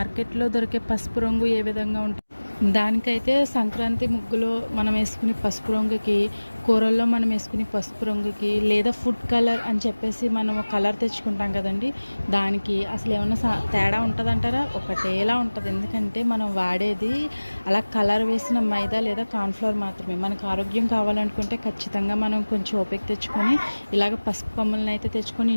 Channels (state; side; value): inverted; both; correlation -1.00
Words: దొరికే పసుపు రంగు ఏ విధంగా ఉంటుందో, దానికైతే సంక్రాంతి ముగ్గులో మనం వేసుకునే పసుపు రంగుకి, కూరల్లో మనం వేసుకునే పసుపు రంగుకి, లేదా ఫుడ్ కలర్ అని చెప్పేసి మనము కలర్ తెచ్చుకుంటాం కదండీ! దానికి అసలు ఏమన్నా తేడా ఉంటదంటారా? ఒకటేలా ఉంటది. ఎందుకంటే మనం వాడేది అలా కలర్ వేసిన మైదా లేదా కార్న్‌ఫ్లోర్ మాత్రమే. మనకు ఆరోగ్యం కావాలనుకుంటే ఖచ్చితంగా మనం కొంచెం ఓపిక తెచ్చుకొని ఇలాగ పసుపు కొమ్ములనైతే తెచ్చుకొని